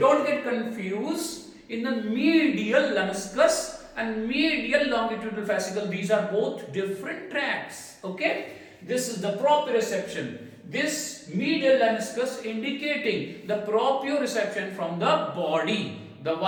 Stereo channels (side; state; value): both; identical; correlation 1.00